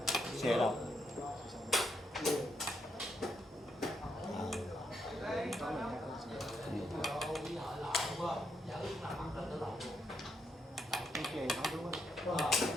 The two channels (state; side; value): normal; both; correlation 0.78